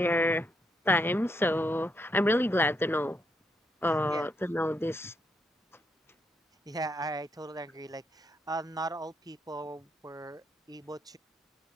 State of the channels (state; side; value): normal; both; correlation 0.78